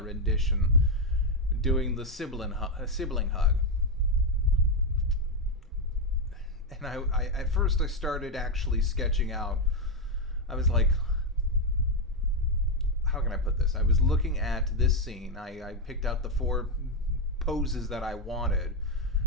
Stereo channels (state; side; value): normal; both; correlation 0.04